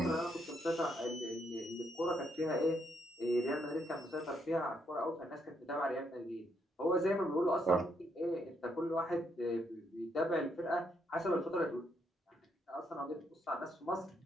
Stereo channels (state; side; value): normal; both; correlation 0.75